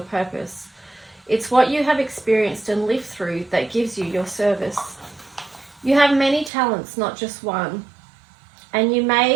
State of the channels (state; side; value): drops out; left; at 6.5 s